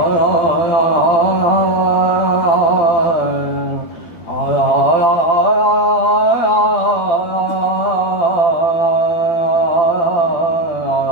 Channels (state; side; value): late; right; 12 ms